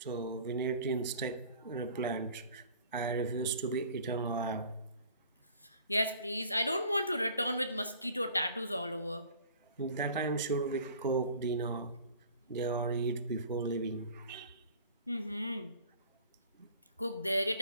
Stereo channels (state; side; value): inverted; both; correlation -0.49